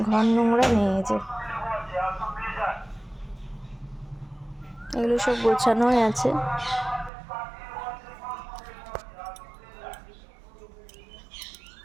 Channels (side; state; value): left; drops out; at 7.1 s